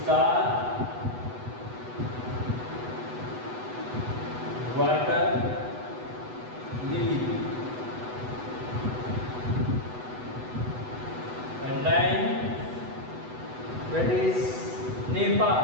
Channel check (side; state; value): left; late; 8.1 ms